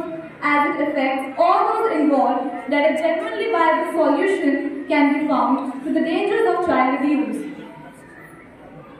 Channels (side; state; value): both; identical; correlation 1.00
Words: as it affects all those involved that a genuinely viable solution can be found to the dangers of child abuse.